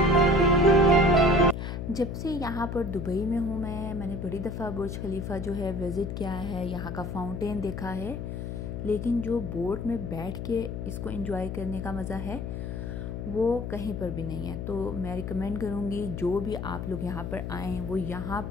जब से यहाँ पर दुबई में हूँ मैंने बड़ी दफ़ा बुर्ज खलीफा जो है विज़िट किया है, यहाँ का फाउंटेन देखा है, लेकिन जो बोट में बैठ के इसको एंजॉय करने का मज़ा है वो कहीं पर भी नहीं है। तो मैं रिकमेंड करूँगी जो भी आप लोग यहाँ पर आएँ वो यहाँ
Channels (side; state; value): left; noise; hum, 5 dB below the sound